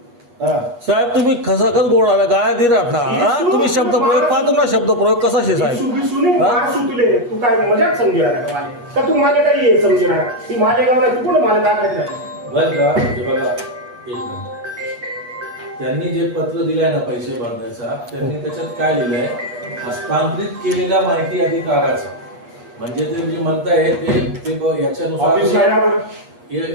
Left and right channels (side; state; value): left; late; 8.3 ms